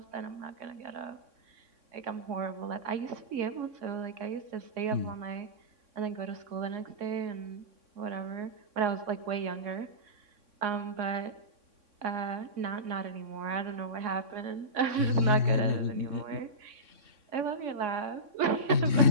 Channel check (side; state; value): left; late; 3.6 ms